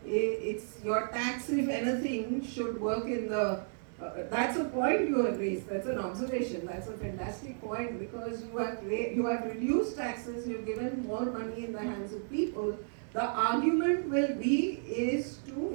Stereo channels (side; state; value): left; silent; digital silence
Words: it's your tax, if anything, should work in the. That's a point you have raised. That's an observation. That's a fantastic point because you have reduced taxes. You've given more money in the hands of people. The argument is to